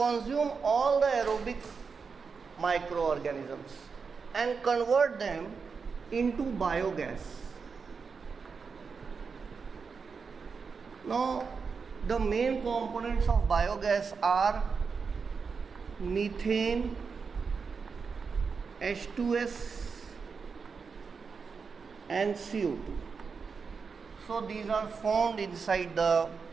all the aerobic microorganisms and convert them into biogas. Now, the main components of biogas are methane, H2S and CO2. So these are formed inside the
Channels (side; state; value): left; quieter; 5.3 dB